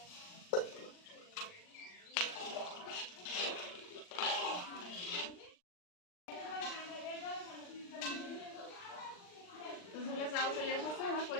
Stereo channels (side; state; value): right; late; 39 ms